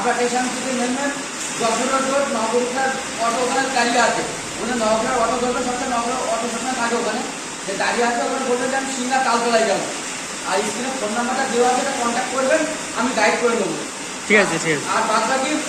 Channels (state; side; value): identical; both; correlation 1.00